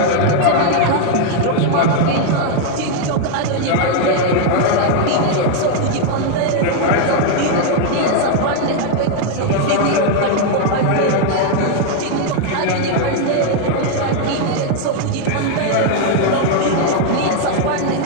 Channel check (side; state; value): both; different; correlation 0.00